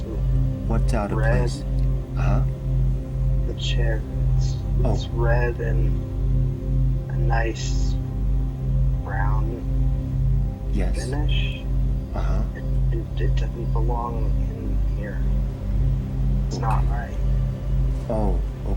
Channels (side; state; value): both; identical; correlation 1.00